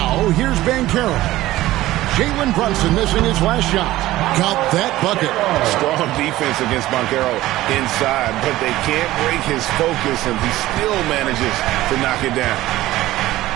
here's Banchero. Jalen Brunson missing his last shot. Got that bucket. Strong defense against Banchero inside, but they can't break his focus, and he still manages to knock it down.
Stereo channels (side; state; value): left; quieter; 16.2 dB